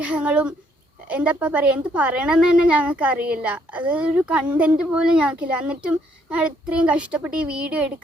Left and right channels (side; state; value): both; normal; correlation 0.69